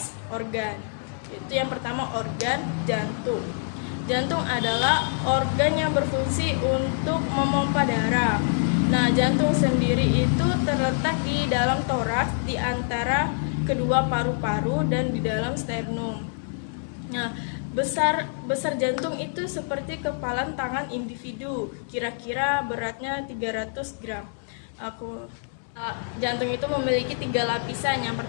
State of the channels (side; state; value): right; silent; 59 dB below the other